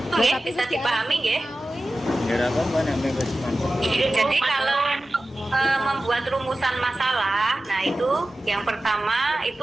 Itu ya, bisa dipahami ya. Jadi kalau membuat rumusan masalah, nah itu yang pertama itu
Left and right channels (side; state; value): both; normal; correlation 0.95